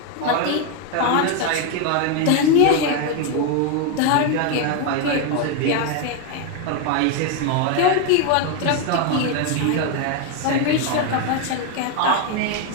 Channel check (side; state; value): both; different; correlation 0.01